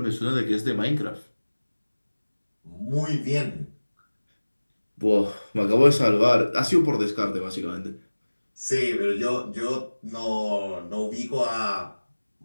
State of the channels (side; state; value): both; inverted; correlation -1.00